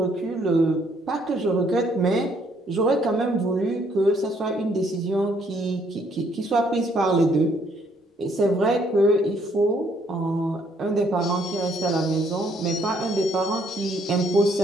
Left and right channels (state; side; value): normal; both; correlation 0.67